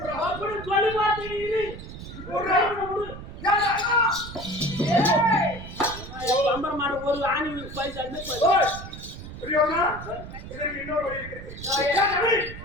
ஒரு ஆணி இதற்கு இன்னொரு வழி இருக்கு.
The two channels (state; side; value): noise; right; rumble, 12 dB below the sound